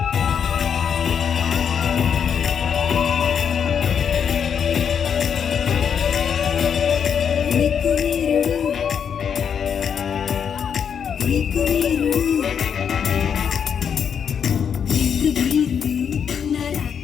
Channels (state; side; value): quieter; right; 7.5 dB